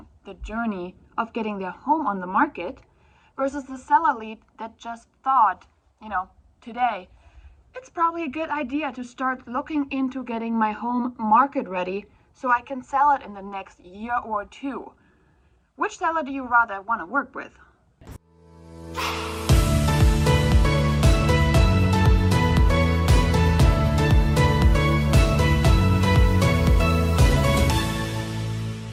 the journey of getting their home on the market versus the seller lead that just thought, today, it's probably a good idea to start looking into getting my home market ready so I can sell it in the next year or two. Which seller do you rather want to work with?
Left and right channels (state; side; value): identical; both; correlation 1.00